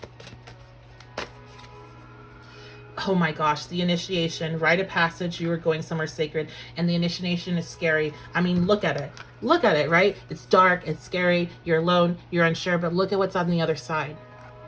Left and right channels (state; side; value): identical; both; correlation 1.00